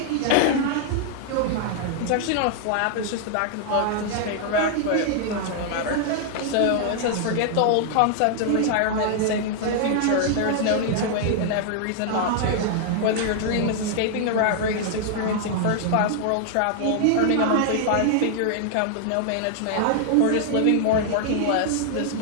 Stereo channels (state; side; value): different; both; correlation 0.00